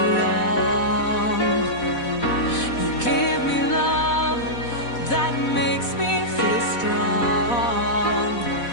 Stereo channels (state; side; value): late; right; 4.1 ms